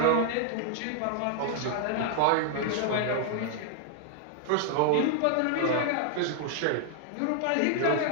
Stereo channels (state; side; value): different; both; correlation 0.00